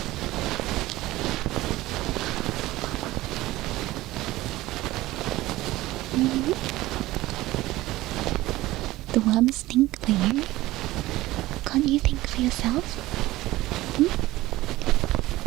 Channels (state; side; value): quieter; left; 17.4 dB